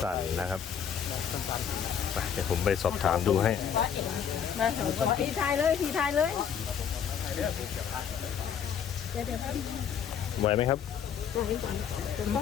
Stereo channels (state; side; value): quieter; right; 8.1 dB